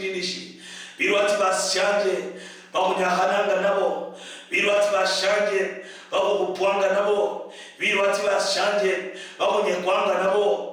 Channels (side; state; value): both; identical; correlation 1.00